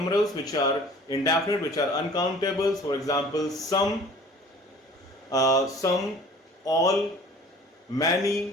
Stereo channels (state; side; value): normal; both; correlation 0.48